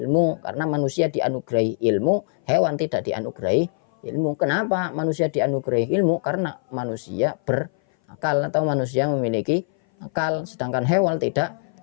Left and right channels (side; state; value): right; silent; 58 dB below the other